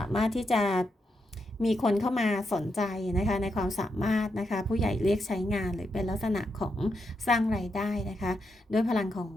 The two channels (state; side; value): normal; both; correlation 0.83